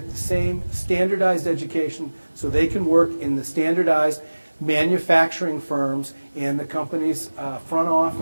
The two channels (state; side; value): inverted; both; correlation -1.00